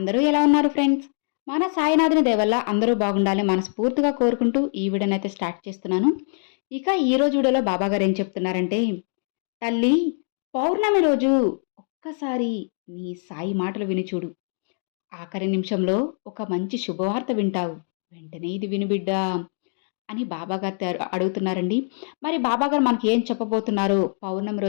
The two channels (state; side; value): silent; right; 63 dB below the other